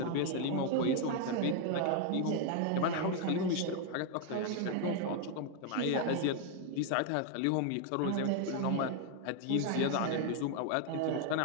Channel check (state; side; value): different; both; correlation 0.01